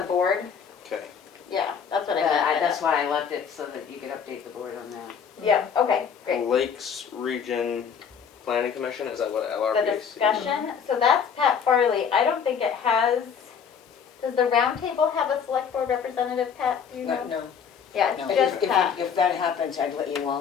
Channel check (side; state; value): right; quieter; 7.1 dB